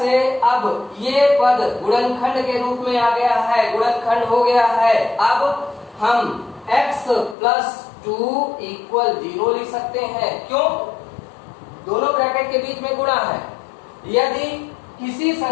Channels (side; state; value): right; drops out; at 7.4 s